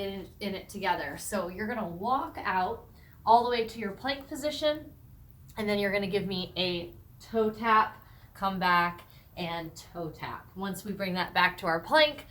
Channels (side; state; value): both; identical; correlation 1.00